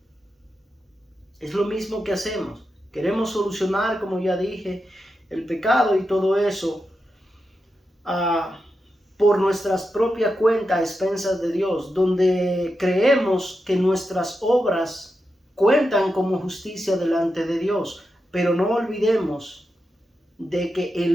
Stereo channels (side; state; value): both; normal; correlation 0.88